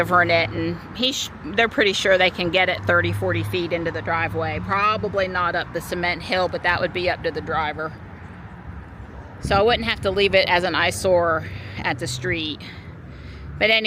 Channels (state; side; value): identical; both; correlation 1.00